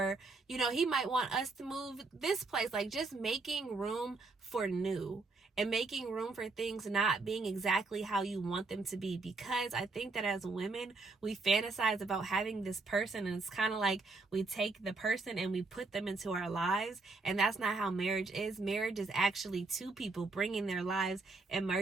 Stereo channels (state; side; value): quieter; left; 3.7 dB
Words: he might want us to move this place. Like, just making room for new and making room for things not being exactly how you want them to be. Because I think that as women, we fantasize about having this person, and it's kind of like we take the person and we put them into our lives, and that's not how marriage is. Marriage is actually two people bringing their lives and